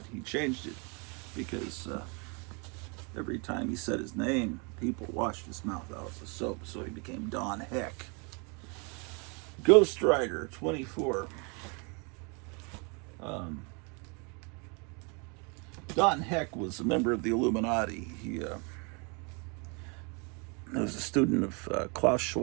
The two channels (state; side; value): quieter; left; 33.0 dB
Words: he changed it because every time he said his name, people washed his mouth out with soap, so he became Don Heck. Ghost Rider 24. Don Heck was a member of the Illuminati. He was a student of Klaus